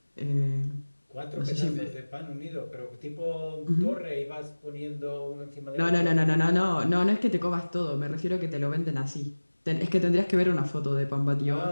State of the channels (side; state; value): both; inverted; correlation -1.00